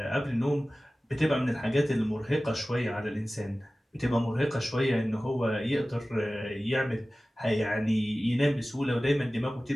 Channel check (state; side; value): normal; both; correlation 0.97